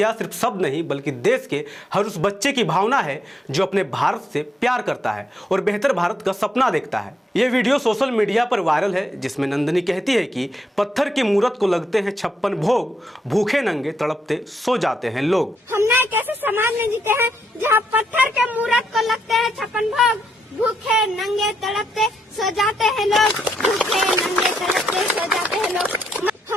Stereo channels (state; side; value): normal; both; correlation 0.79